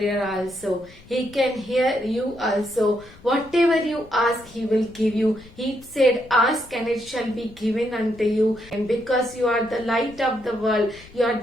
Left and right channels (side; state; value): left; noise; rumble, 23 dB below the sound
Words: also. He can hear you also. Whatever you ask, He will give you. He said, ask and it shall be given unto you. And because you are the light of the world, you are